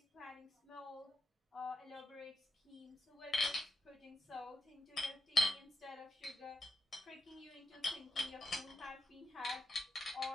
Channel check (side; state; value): both; normal; correlation 0.83